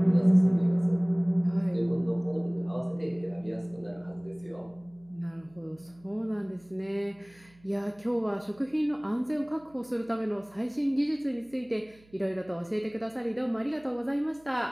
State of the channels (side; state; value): right; noise; hum, 28 dB below the sound